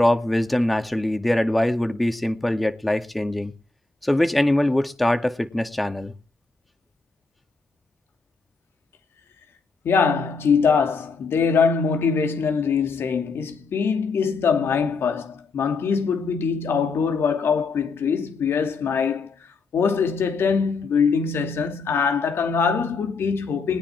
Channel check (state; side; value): quieter; right; 3.9 dB